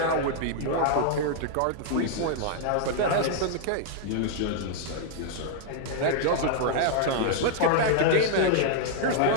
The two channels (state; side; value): different; both; correlation -0.01